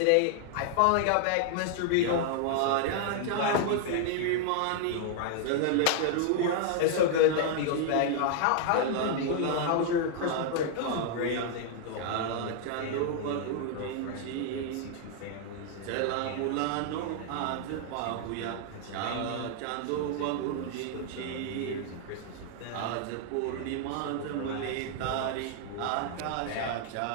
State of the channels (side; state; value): both; different; correlation 0.00